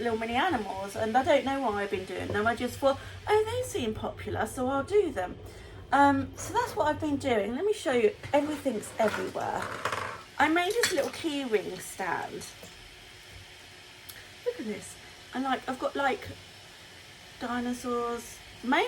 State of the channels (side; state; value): both; identical; correlation 1.00